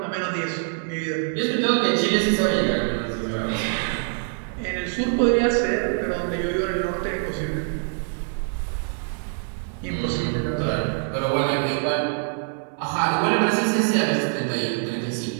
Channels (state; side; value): silent; left; digital silence